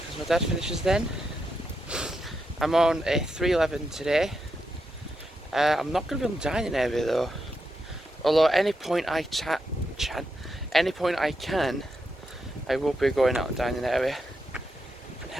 my dad finishes then. I'm on a 311 today. I'm not going to be on the dining area though. Although at any point I can, I will be going out and dining area and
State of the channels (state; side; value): normal; both; correlation 0.84